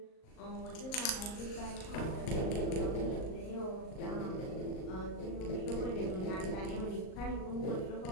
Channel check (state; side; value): late; right; 38 ms